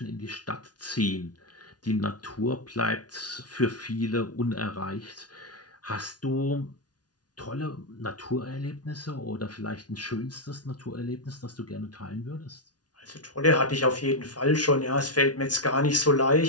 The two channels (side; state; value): right; late; 0.69 ms